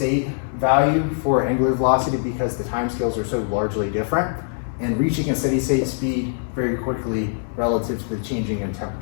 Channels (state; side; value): silent; right; 64 dB below the other